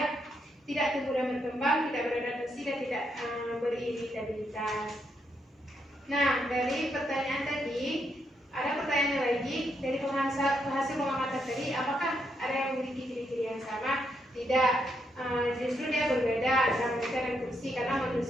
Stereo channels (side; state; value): both; normal; correlation 0.78